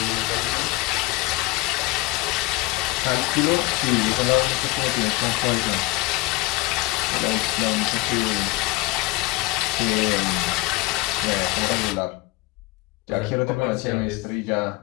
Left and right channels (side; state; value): right; quieter; 19.4 dB